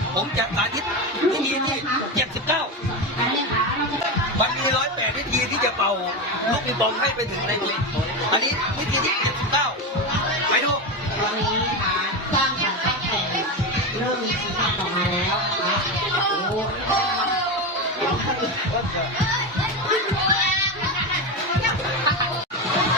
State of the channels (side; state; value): both; normal; correlation 0.16